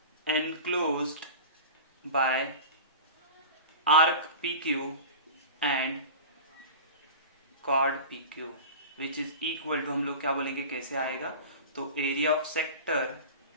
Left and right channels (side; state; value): both; inverted; correlation -0.33